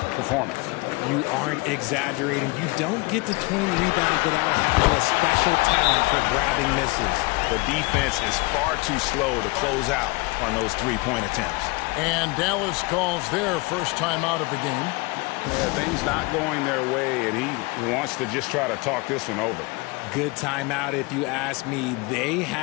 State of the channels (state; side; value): quieter; right; 26.0 dB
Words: performance. You aren't exaggerating. You don't get to 20 rebounds without having a special talent for grabbing misses. The defense is far too slow to close out on those 3-point attempts. And Dallas calls their first time out of the game. Yeah, things not going their way, and he wants to just try to talk this one over. Good timeout if you ask me. They